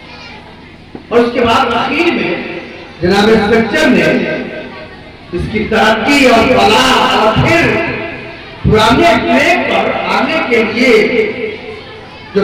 और उसके बाद आखिर में जनाब सच्चर ने इसकी तरक्की और फलाह और फिर पुराने ट्रैक पर आने के लिए जो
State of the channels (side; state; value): both; identical; correlation 1.00